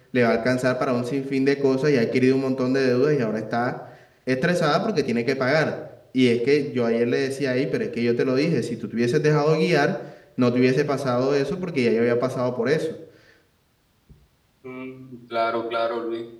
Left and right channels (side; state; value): both; identical; correlation 1.00